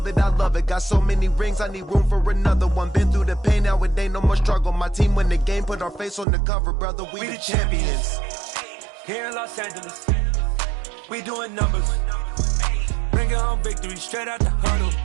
it. Got so many rings, I need room for another one. Been through the pain, now it ain't no more struggle. My team win the game, put our face on the cover, brother. We the champions. Here in Los Angeles, we doing numbers. Bringing home victory straight out the huddle.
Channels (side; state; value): left; drops out; at 6.2 s